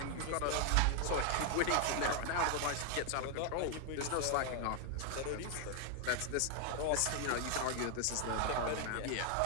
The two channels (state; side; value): different; both; correlation 0.00